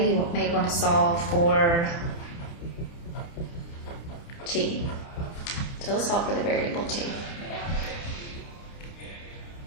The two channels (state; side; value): late; right; 29 ms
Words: you may want to solve for T. So let's solve for the variable T.